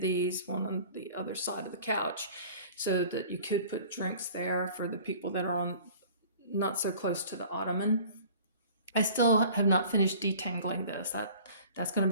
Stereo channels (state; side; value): inverted; both; correlation -0.47